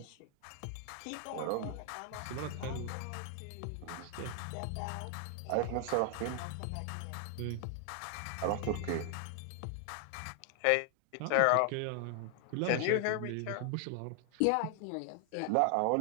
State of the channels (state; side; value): different; both; correlation 0.00